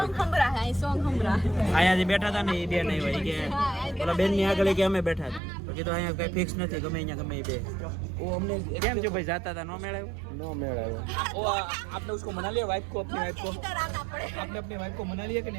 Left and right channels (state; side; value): drops out; left; at 5.4 s